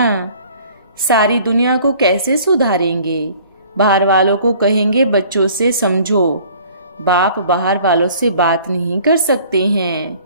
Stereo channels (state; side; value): inverted; both; correlation -0.53